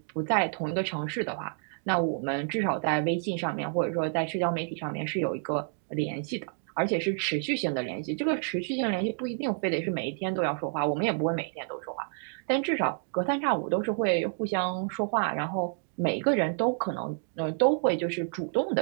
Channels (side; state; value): left; silent; 58 dB below the other